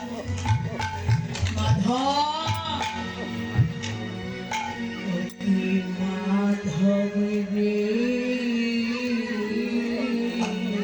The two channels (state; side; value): identical; both; correlation 1.00